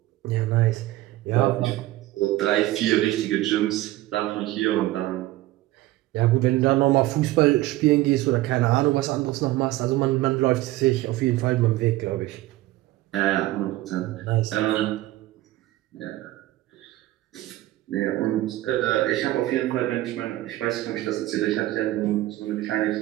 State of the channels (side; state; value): left; quieter; 16.6 dB